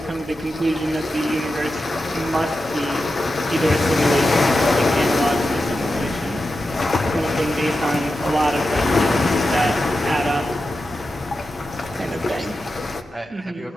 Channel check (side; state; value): both; normal; correlation 0.90